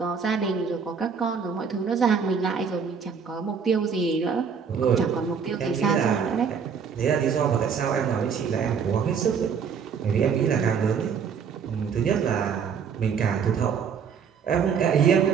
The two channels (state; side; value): quieter; left; 6.5 dB